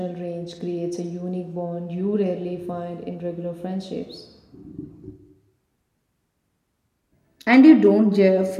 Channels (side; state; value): both; identical; correlation 1.00